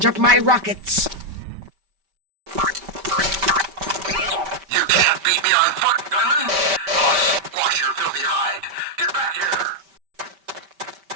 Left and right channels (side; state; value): left; late; 5.1 ms